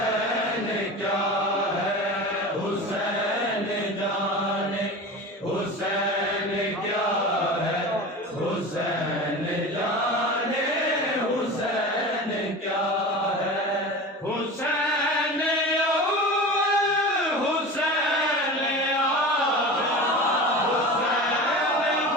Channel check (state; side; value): normal; both; correlation 0.32